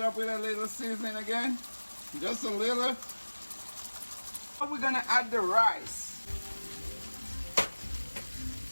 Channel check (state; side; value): inverted; both; correlation -1.00